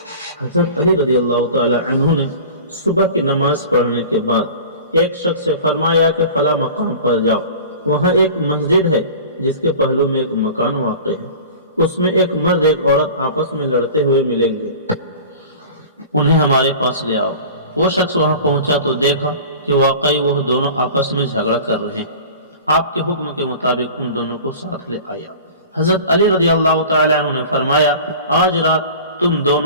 حضرت علی رضی اللہ تعالی عنہ نے صبح کی نماز پڑھنے کے بعد ایک شخص سے فرمایا کہ فلاں مقام پر جاؤ، وہاں ایک مسجد ہے جس کے پہلو میں ایک مکان واقع ہے، اس میں ایک مرد ایک عورت آپس میں لڑتے ہوئے ملیں گے، انہیں ہمارے پاس لے آؤ۔ وہ شخص وہاں پہنچا تو دیکھا کہ واقعی وہ دونوں آپس میں جھگڑا کر رہے ہیں۔ آپ کے حکم کے مطابق ان دونوں کو ساتھ لے آیا۔ حضرت علی رضی اللہ تعالی عنہ نے فرمایا، آج رات تم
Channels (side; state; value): both; inverted; correlation -0.39